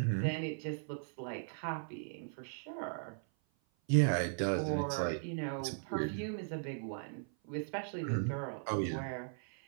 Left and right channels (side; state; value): left; silent; 53 dB below the other